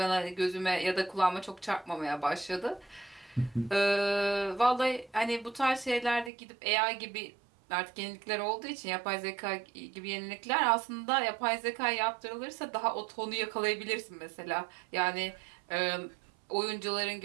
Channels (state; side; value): drops out; left; at 6.3 s